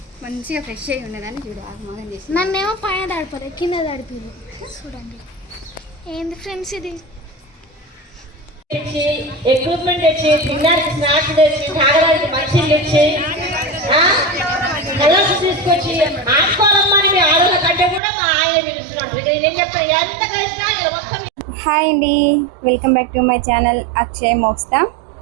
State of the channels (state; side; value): drops out; left; at 18.0 s